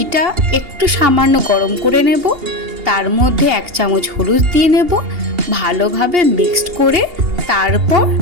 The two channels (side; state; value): left; late; 2.8 ms